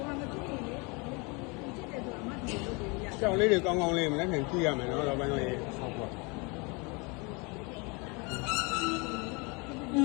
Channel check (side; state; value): right; quieter; 29.8 dB